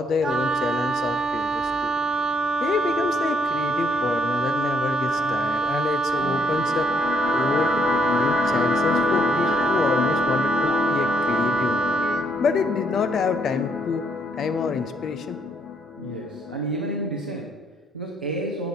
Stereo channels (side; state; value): both; normal; correlation 0.71